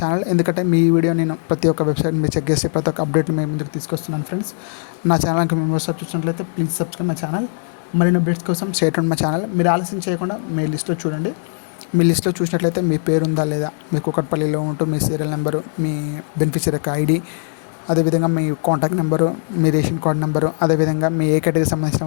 channel, ఎందుకంటే మీ వీడియో నేను ప్రతి ఒక్క వెబ్సైట్ మీరు చెక్ చేసి ప్రతి ఒక్క అప్డేట్ని మేము ముందుకు తీసుకొస్తున్నాను ఫ్రెండ్స్. నా ఛానల్కి మేము చూసినట్లయితే ప్లీజ్ సబ్స్క్రైబ్ మై ఛానల్. మరిన్ని అప్డేట్స్ కోసం స్టేట్ ఆన్ మై ఛానల్. మీరు ఆలస్యం చేయకుండా మీ లిస్ట్లో చూడండి. మీ లిస్ట్లో చూసినట్లయితే మీ పేరు ఉందా లేదా, మీ కుకట్పల్లిలో ఉంటూ మీ సీరియల్ నెంబరు, మీ బెనిఫిషియరీ యొక్క ఐడి, అదేవిధంగా మీ కాంటాక్ట్ నెంబరు, మీ రేషన్ కార్డ్ నెంబరు, అదేవిధంగా మీ ఏ కేటగిరీకి సంబంధించిన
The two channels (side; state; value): right; silent; 66 dB below the other